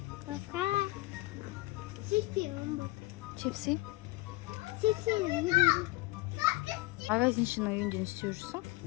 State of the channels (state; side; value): quieter; right; 20.4 dB